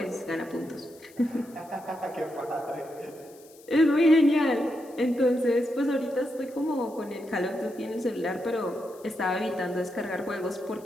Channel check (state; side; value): noise; left; hiss, 25 dB below the sound